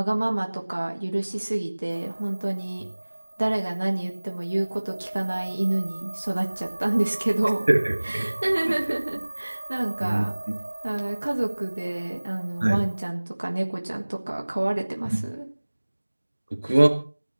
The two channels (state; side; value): inverted; both; correlation -1.00